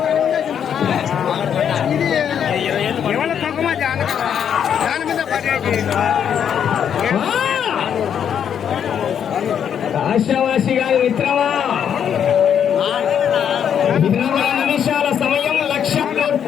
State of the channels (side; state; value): right; quieter; 8.5 dB